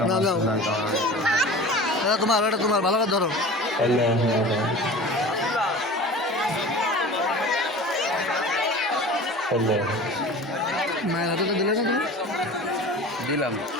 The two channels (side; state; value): both; normal; correlation 0.38